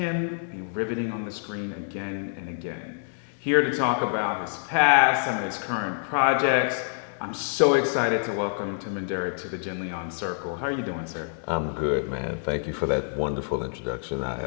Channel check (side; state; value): right; silent; digital silence